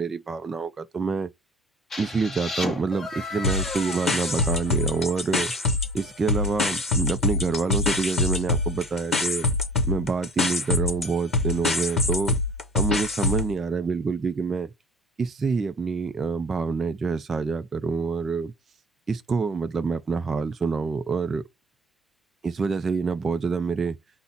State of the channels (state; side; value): normal; both; correlation 0.48